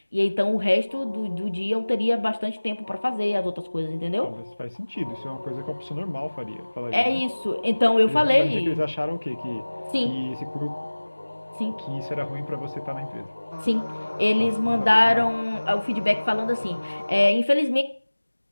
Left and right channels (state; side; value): inverted; both; correlation -1.00